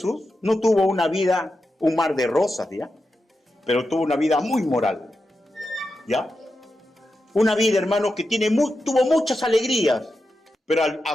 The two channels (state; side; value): normal; both; correlation 0.89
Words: no tuvo una vida, un mar de rosas, ¿ya? Pero tuvo una vida muy moral, ¿ya? Una vida, hermanos, que tuvo muchas alegrías, pero a